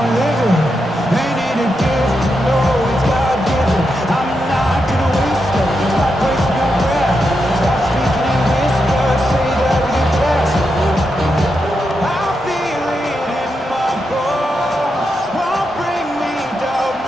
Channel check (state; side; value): normal; both; correlation 0.85